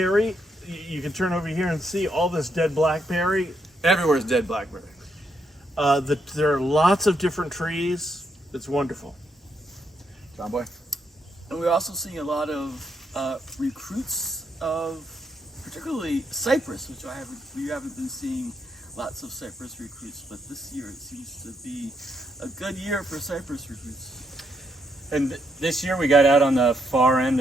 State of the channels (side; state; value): both; normal; correlation 0.78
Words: you can turn over here and see all this dead blackberry. Everywhere's dead blackberry. There are lots of different trees. It's wonderful. John Boy? And we're also seeing a lot of recruits of particularly cypress, which we haven't been seeing lots of cypress recruits, but this year it seems to be a good year for cypress recruits. And this year we got out on the far end